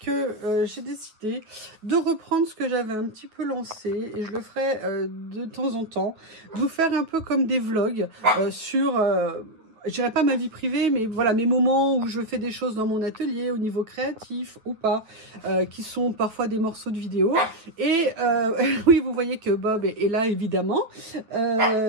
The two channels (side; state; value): left; late; 9.1 ms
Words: j'ai décidé de reprendre ce que j'avais un petit peu lancé et je le ferai de temps en temps, de vous faire un peu comme des vlogs sur, je dirais pas ma vie privée, mais voilà mes moments où je fais des choses dans mon atelier au niveau créatif ou pas, qui sont parfois des morceaux de vidéo. Et oui, vous voyez que Bob est là évidemment,